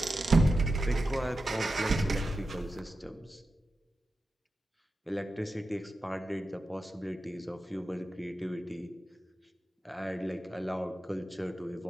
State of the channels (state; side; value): normal; both; correlation 0.91